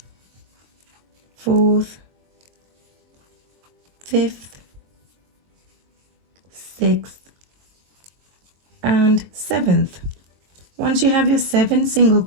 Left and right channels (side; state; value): left; late; 22 ms